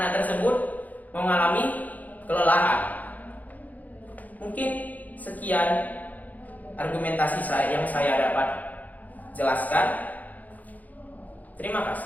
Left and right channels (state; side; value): late; right; 0.080 ms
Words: tersebut mengalami kelelahan. Mungkin sekian argumentasi yang saya dapat jelaskan. Terima